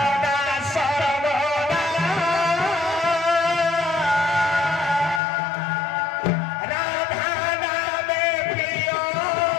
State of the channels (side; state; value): right; drops out; at 5.2 s